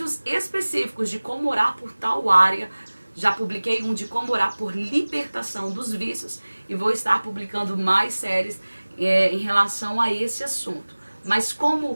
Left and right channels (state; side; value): inverted; both; correlation -1.00